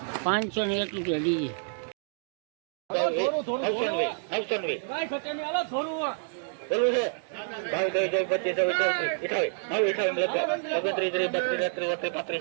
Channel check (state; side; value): silent; left; digital silence